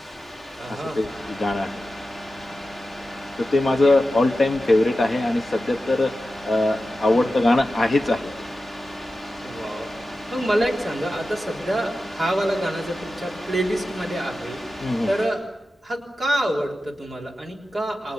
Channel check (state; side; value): normal; both; correlation 0.93